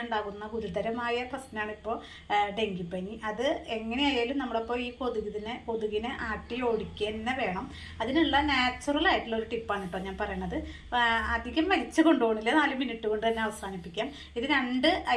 ഉണ്ടാകുന്ന ഗുരുതരമായ പ്രശ്നമാണ് ഇപ്പോൾ ഡെങ്കിപ്പനി. അത് എങ്ങനെയായാലും നമ്മളിപ്പോൾ ഈ കൊതുകിനെ ആട്ടി ഓടിക്കുക തന്നെ വേണം. അതിനുള്ള നാച്ചുറൽ ആയിട്ടുള്ള ഒരു ടിപ്പാണ് കേട്ടോ ഞാൻ പറയണത്. അധികം വലിച്ചു കൊണ്ടുപോകണില്ല, 4 മിനിറ്റ് കൊണ്ട് തന്നെ അവസാനിപ്പിക്കാം. ഇത് 2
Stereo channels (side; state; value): both; identical; correlation 1.00